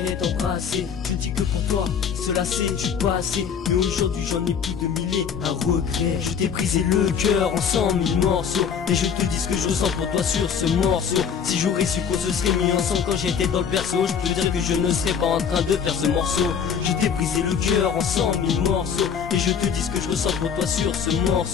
et t'embrasser. Je dis que pour toi, cela c'est du passé. Mais aujourd'hui j'en ai plus de mille et un regret. Je t'ai brisé le cœur en 100 000 morceaux. Et je te dis ce que je ressens pour toi sur ce morceau. Si j'aurais su qu'on se serait mis ensemble quand j'étais dans le berceau, je peux dire que je ne serais pas en train de faire ce morceau. Je t'ai brisé le cœur en 100 000 morceaux. Et je te dis ce que je ressens pour toi sur ce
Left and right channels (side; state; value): right; quieter; 7.1 dB